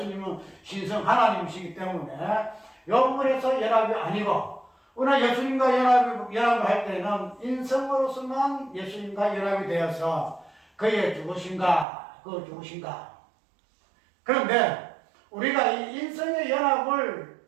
신성 하나님이시기 때문에 이 부분에서 연합이 아니고, 우리가 예수님과 연합을 할 때는 인성으로서만 예수님과 연합이 되어서 그의 죽으신가. 그런데 우리가 이 인성의 연합을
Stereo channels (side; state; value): left; drops out; at 11.9 s